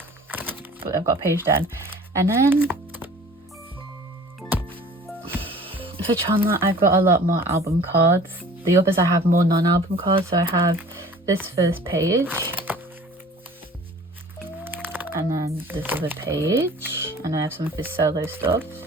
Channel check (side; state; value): both; normal; correlation 0.47